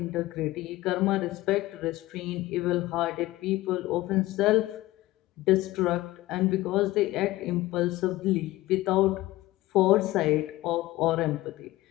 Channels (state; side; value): quieter; right; 17.6 dB